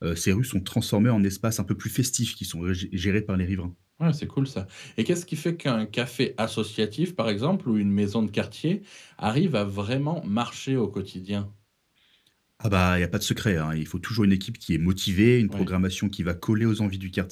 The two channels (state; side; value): identical; both; correlation 1.00